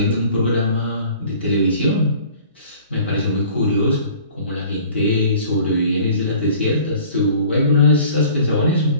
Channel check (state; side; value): inverted; both; correlation -0.49